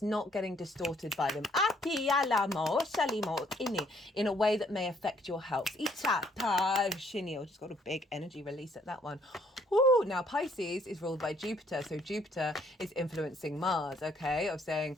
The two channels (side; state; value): both; normal; correlation 0.65